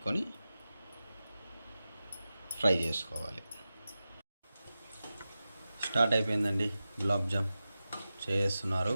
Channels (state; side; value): inverted; both; correlation -0.93